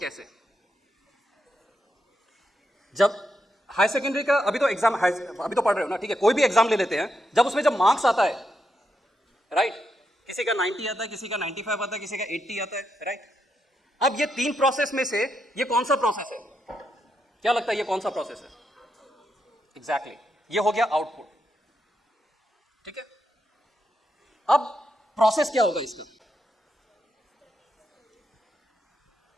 जब हाई सेकेंडरी का अभी तो एग्जाम, अभी तो पढ़ रहे हो ना, ठीक है, कोई भी एग्जाम ले लेते हैं, जब उसमें जब मार्क्स आता है, राइट, किसी का 90 आता है, किसी का 95 आता है, किसी का 80 आता है, राइट। अब ये 3 प्रोसेस में से ये कौन सा प्रोसेस है? क्या लगता है ये कौन सा प्रोसेस है? एग्जैक्टली, ये हो गया आउटपुट, ठीक है। अब प्रोसेस क्या होगा इसका?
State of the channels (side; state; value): both; normal; correlation 0.82